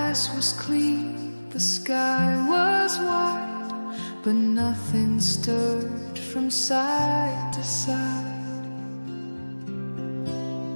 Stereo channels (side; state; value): both; inverted; correlation -1.00